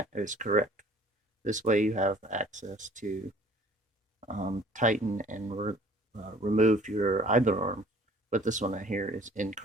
is correct. This way you have access to tighten and remove your idler arm, but this one right here is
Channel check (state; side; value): normal; both; correlation 0.52